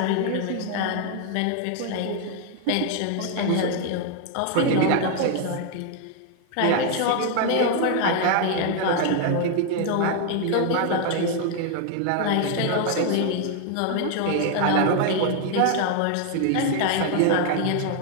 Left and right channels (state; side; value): different; both; correlation 0.00